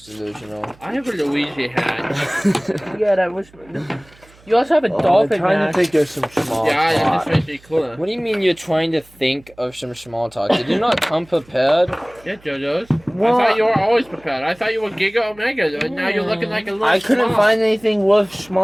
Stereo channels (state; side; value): noise; right; hum, 27 dB below the sound